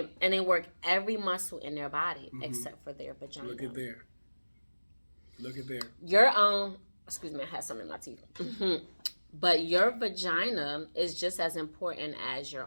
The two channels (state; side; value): inverted; both; correlation -1.00